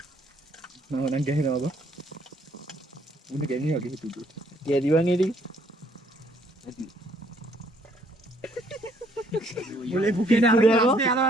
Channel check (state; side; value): normal; both; correlation 0.65